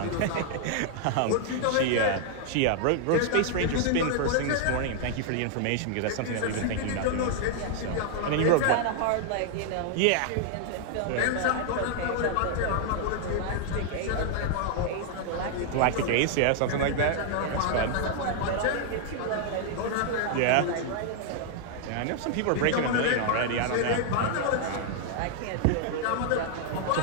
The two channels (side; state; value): both; different; correlation 0.00